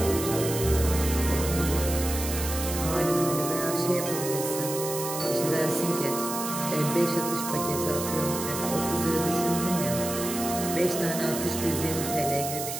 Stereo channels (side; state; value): right; noise; hiss, 6 dB below the sound